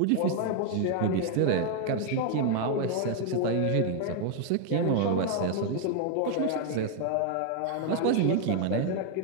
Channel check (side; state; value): both; different; correlation 0.00